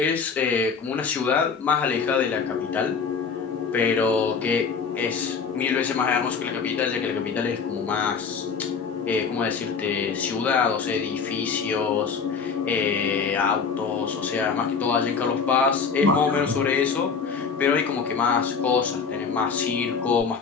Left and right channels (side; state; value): right; quieter; 5.7 dB